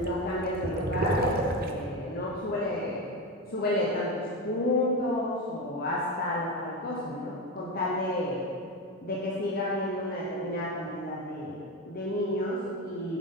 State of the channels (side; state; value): both; normal; correlation 0.18